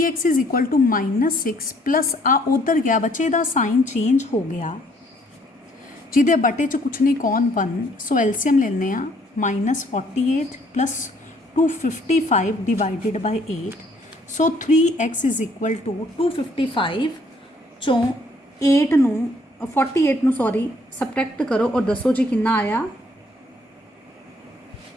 is equal to -6 plus आ उधर गया बच्चे का साइन चेंज हो गया जिदे बटे च कुछ नहीं कौन 1। सो एलसीएम लेने -48 plus 255 divided by 8। So 3x is equal to 255 चों 8 नू 48 नू सॉरी सबट्रैक्ट करो और दसो जी कितना आया।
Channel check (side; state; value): both; normal; correlation 0.64